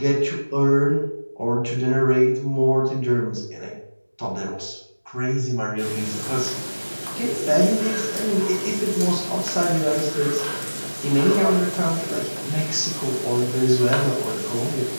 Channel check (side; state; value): both; inverted; correlation -1.00